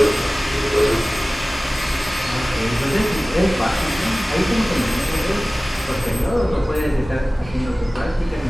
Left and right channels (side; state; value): both; normal; correlation 0.98